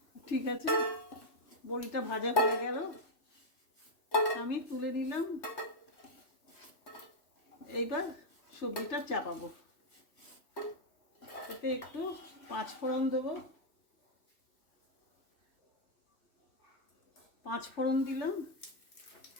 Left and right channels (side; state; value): right; late; 3.0 ms